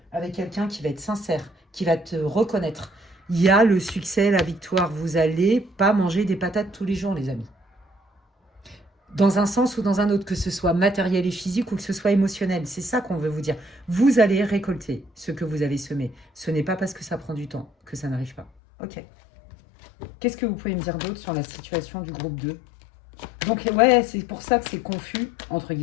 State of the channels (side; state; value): right; drops out; at 18.5 s